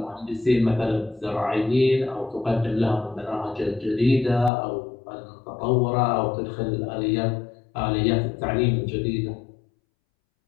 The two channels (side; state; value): right; drops out; at 4.5 s